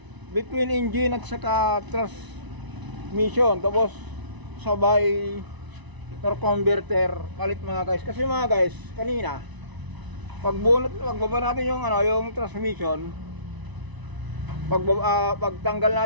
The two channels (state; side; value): late; left; 1.0 ms